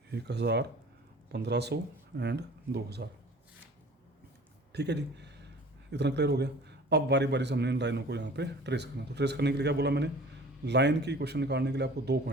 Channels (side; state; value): both; normal; correlation 0.45